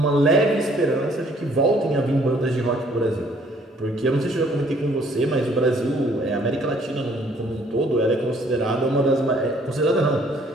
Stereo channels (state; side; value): normal; both; correlation 0.61